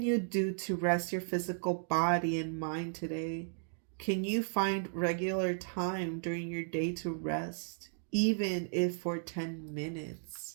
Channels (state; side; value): silent; left; digital silence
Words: you do to rest your physical body and mind today? Can you find regular time during your day to rest, even if for 10